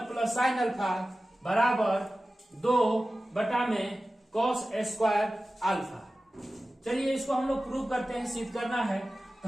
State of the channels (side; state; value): both; normal; correlation 0.95